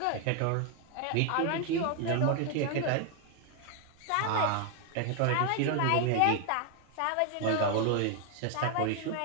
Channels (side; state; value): both; different; correlation 0.00